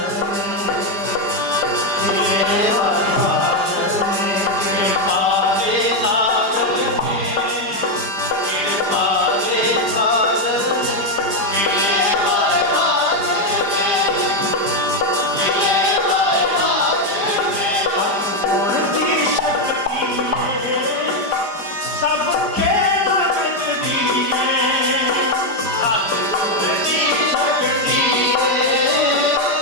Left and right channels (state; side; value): late; left; 5.0 ms